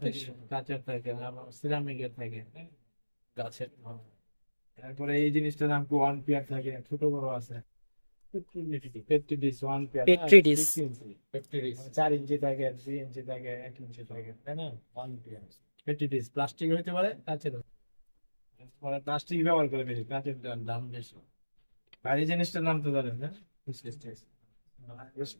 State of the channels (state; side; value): inverted; both; correlation -1.00